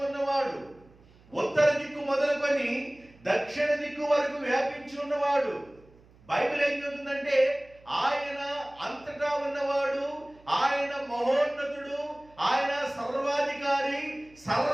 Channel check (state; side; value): noise; right; hum, 27 dB below the sound